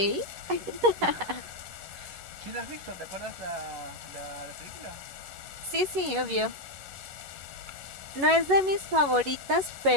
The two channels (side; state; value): left; late; 11 ms